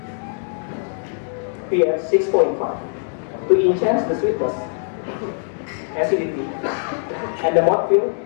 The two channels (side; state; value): right; silent; digital silence